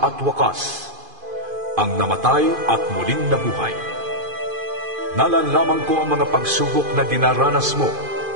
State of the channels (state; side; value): late; left; 2.5 ms